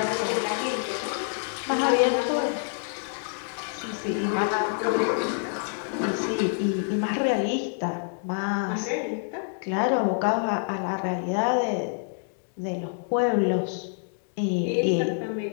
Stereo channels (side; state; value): right; silent; digital silence